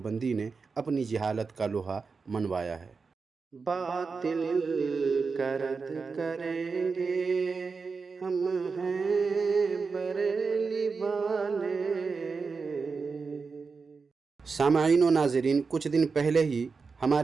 نے اپنی جہالت کا لوہا منوایا ہے۔ باطل کا رد کریں گے ہم ہیں بریلی والے۔ سامعین و ناظرین، کچھ دن پہلے ہی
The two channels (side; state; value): left; quieter; 4.8 dB